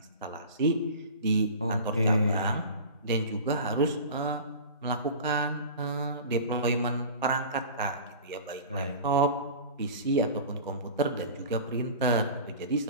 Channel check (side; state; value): both; inverted; correlation -0.36